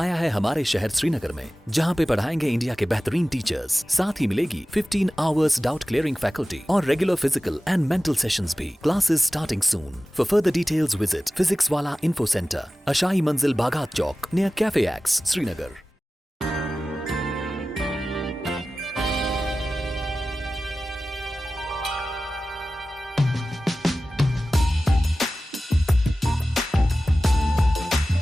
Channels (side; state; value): both; normal; correlation 0.96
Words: है हमारे शहर श्रीनगर में, जहां पे पढ़ाएंगे इंडिया के बेहतरीन टीचर्स। साथ ही मिलेगी 15 आवर्स डाउट क्लियरिंग फैकल्टी और regular physical and mental sessions भी। Classes starting soon. For further details visit Physics Wallah info centre, Ashai Manzil Bagat Chowk, near cafe X, Srinagar.